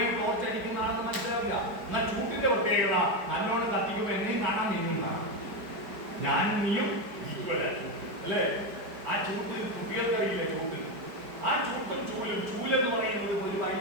ടോർച്ച് അടിക്കുന്ന ആളെന്ന് മനസ്സിലാവില്ല. എന്നാൽ ചൂട്ടിന്റെ പ്രത്യേകത നല്ലോണം കത്തിക്കുമ്പോ എന്നെയും കാണാൻ നീയും കാണാം. ഞാനും നീയും ഈക്വലായി. അല്ലേ? ആ ചൂട്ട് കുട്ടികൾക്കറിയില്ല. ആ ചൂട്ടും ചൂലെന്ന് പറയുന്നത് ഒരു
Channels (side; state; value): left; late; 4.8 ms